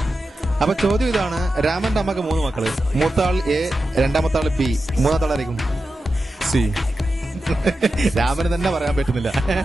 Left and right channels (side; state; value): both; normal; correlation 0.91